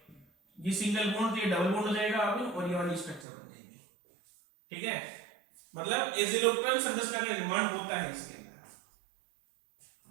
ये सिंगल बॉन्ड, तो ये डबल बॉन्ड हो जाएगा अब, और ये वाली स्ट्रक्चर बन जाएगी। ठीक है, मतलब एजिलोक्टन संरचना का निर्माण होता है इसके अंदर।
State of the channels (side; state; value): left; drops out; at 3.2 s